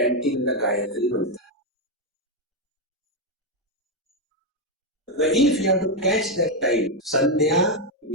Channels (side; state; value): both; normal; correlation 0.03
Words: the Gayatri mantra. If you have to catch that time, Sandhya